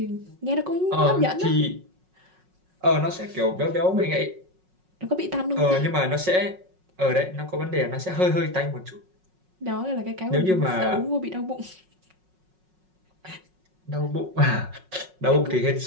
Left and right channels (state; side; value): late; left; 5.4 ms